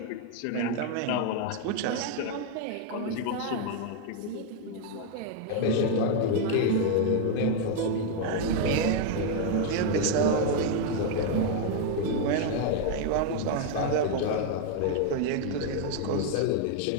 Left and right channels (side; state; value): both; different; correlation 0.01